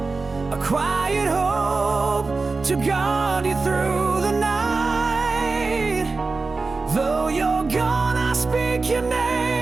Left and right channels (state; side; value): quieter; left; 3.9 dB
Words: a quiet hope to guard you through the night. Though you're gone, I speak your